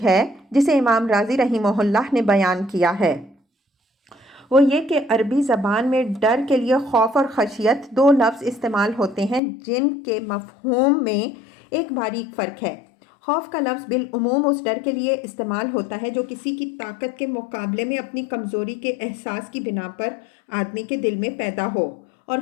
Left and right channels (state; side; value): drops out; right; at 9.4 s